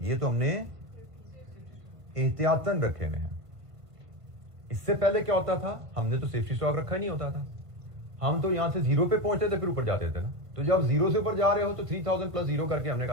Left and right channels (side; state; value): left; late; 1.5 ms